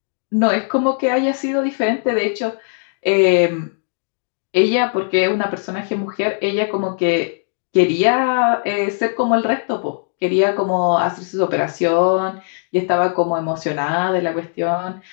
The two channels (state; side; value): silent; right; digital silence